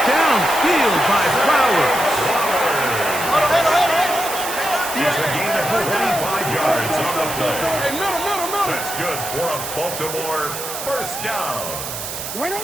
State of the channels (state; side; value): noise; right; hiss, 7 dB below the sound